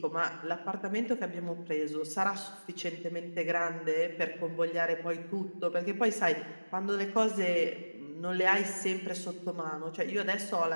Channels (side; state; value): both; inverted; correlation -1.00